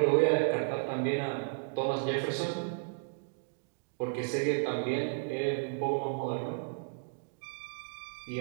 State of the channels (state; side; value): silent; left; digital silence